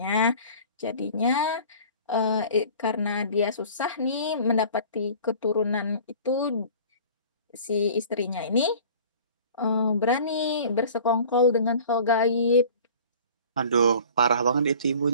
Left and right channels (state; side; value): inverted; both; correlation -0.45